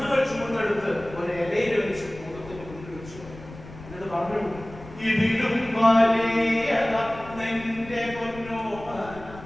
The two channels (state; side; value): noise; left; rumble, 16 dB below the sound